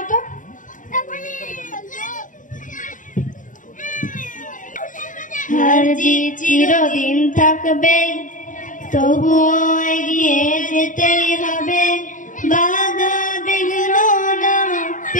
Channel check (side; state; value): right; late; 0.38 ms